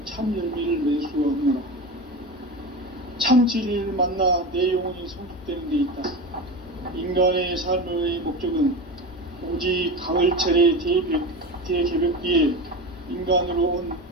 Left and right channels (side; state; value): both; normal; correlation 0.25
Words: 참 열매를 맺을 수가 없노라. 참 진리를 만나 내 영혼이 성숙되는 데 있다. 인간의 삶의 목적은 오직 가을철의 대개벽기에 인간으로 온